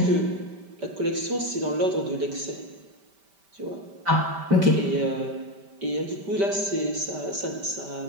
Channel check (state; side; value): late; left; 5.1 ms